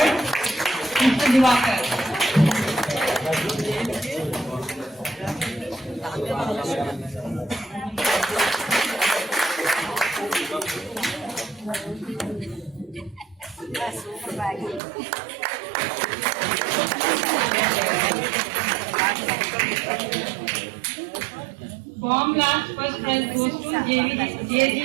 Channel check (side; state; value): left; drops out; at 14.8 s